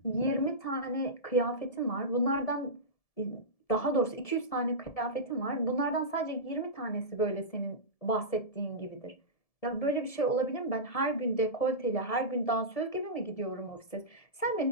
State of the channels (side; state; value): right; late; 1.7 ms